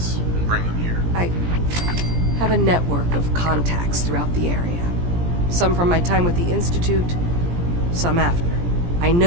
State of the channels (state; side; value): late; left; 17 ms